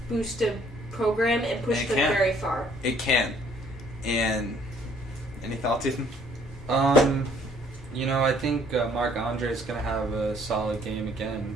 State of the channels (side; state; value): both; normal; correlation 0.61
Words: boost a program and push It them can. very far. It can. And any thoughts, Ethan? I think Marc Andre is going to have a solid game again